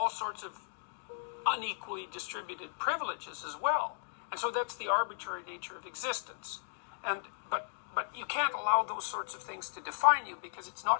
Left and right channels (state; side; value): silent; right; digital silence